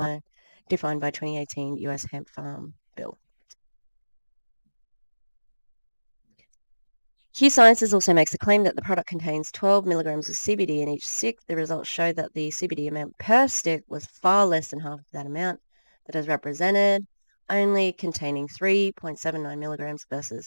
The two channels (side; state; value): both; inverted; correlation -1.00